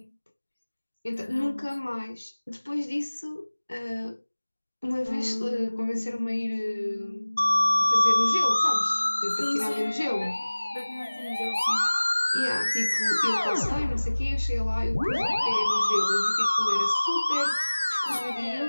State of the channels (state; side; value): inverted; both; correlation -1.00